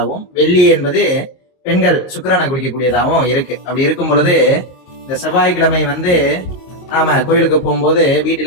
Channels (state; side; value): late; right; 22 ms